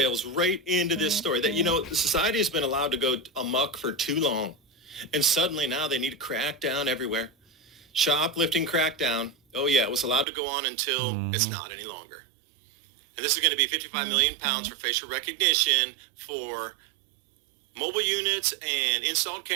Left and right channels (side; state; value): left; drops out; at 10.2 s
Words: right into this story that, you know, society has been allowed to go amok for too long. And suddenly now they need to crack down everywhere. Shoplifting crackdown. Oh, yeah, it was allowed to go on until it's not any longer. And this is going to be 55 million pounds for facial recognition for mobile units and installed